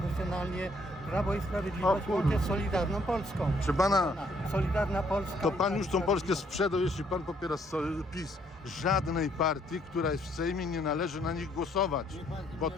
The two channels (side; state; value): both; normal; correlation 0.67